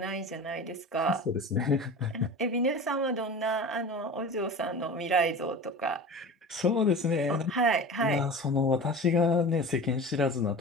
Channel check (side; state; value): both; normal; correlation 0.34